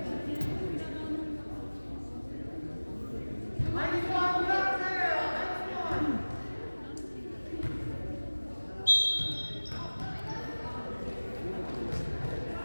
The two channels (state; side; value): inverted; both; correlation -1.00